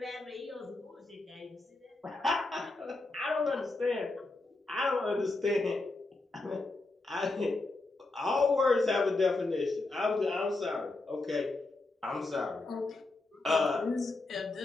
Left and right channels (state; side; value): quieter; right; 3.2 dB